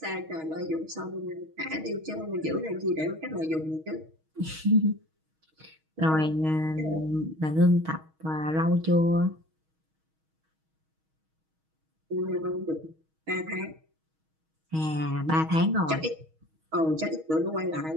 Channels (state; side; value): late; left; 6.3 ms